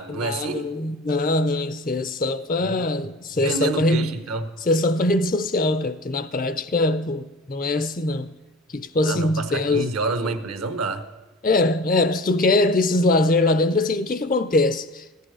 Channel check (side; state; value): both; normal; correlation 0.38